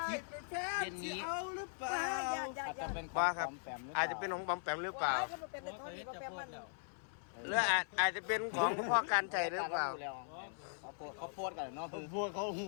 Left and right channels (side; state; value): right; silent; 51 dB below the other